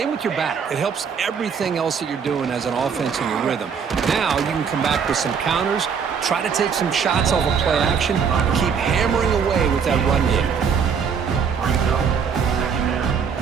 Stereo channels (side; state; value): left; quieter; 6.6 dB